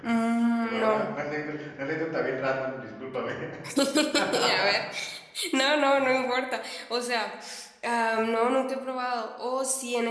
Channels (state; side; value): identical; both; correlation 1.00